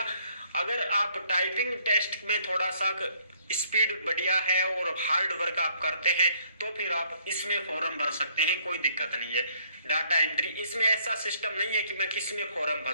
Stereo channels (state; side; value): inverted; both; correlation -0.65